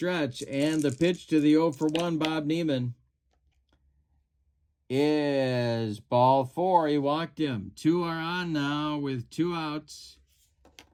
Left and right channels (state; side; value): identical; both; correlation 1.00